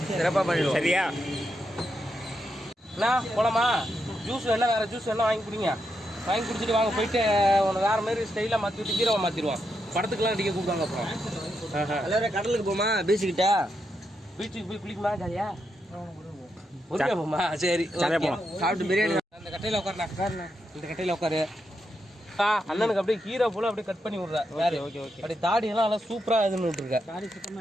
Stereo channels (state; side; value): normal; both; correlation 0.83